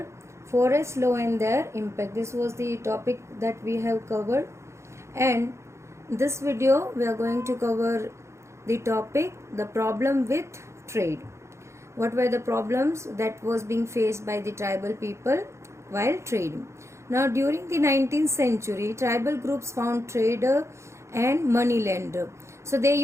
forest law and their impact. This was the topic that we have covered, and this video we are going to cover the topic the problem with trade. What were the problems that was being faced by the tribal people while trading? Now during the 19th century, tribal groups found trader and money lender. So they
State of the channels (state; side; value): late; left; 0.14 ms